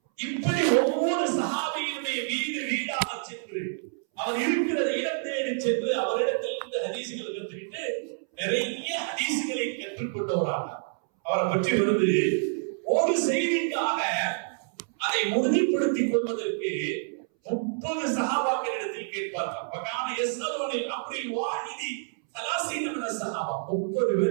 இப்படி ஒவ்வொரு சஹாபியினுடைய வீடு வீடாக சென்று அவர் இருக்கிற இடம் தேடி சென்று அவரிடத்தில் இருந்து ஹதீசுகளை கற்றுக்கிட்டு நிறைய ஹதீசுகளை கற்றுக்கொண்டவராக அவரை பற்றி வருது. ஒரு செய்திக்காக அதை உறுதிப்படுத்திக் கொள்வதற்கு 30 சஹாபாக்களிடத்தில் கேட்பார்கள். பகான யஸ்அலுனில் அம்ரில் வாஹிதி 30 மின சஹாபா, 30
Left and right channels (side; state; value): left; silent; 60 dB below the other